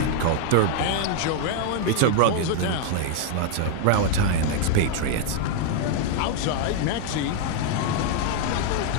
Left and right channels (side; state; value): both; different; correlation 0.00